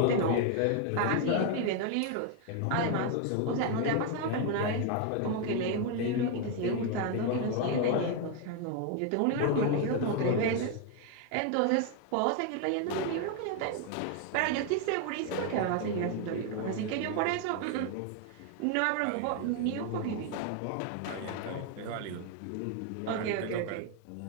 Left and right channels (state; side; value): different; both; correlation 0.01